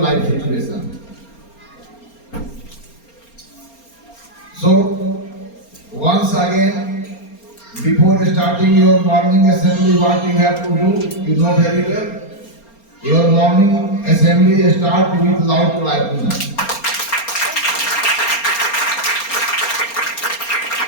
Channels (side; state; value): right; late; 4.3 ms